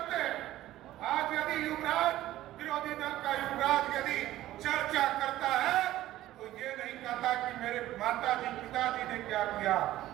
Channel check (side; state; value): left; quieter; 14.8 dB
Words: हैं, आज यदि युवराज, विरोधी दल का युवराज यदि चर्चा करता है तो ये नहीं कहता कि मेरे माता जी पिताजी ने क्या किया,